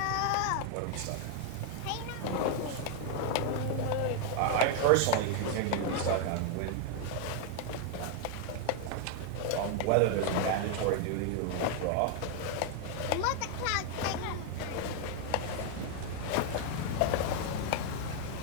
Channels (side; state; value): both; different; correlation 0.00